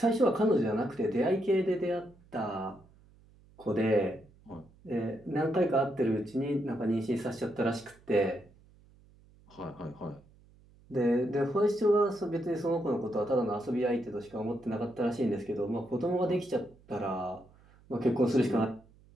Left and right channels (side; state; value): right; noise; hum, 27 dB below the sound